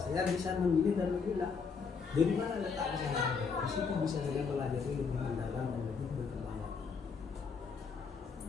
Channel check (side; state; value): right; quieter; 5.4 dB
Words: saya bisa memilih dan memilah dari mana letak kesalahan. Di situ bisa saya pelajari lebih mendalam dan lebih berkembang.